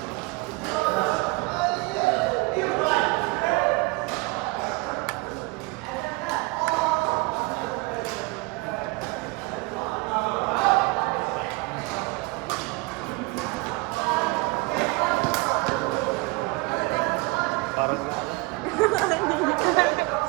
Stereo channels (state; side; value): quieter; left; 25.2 dB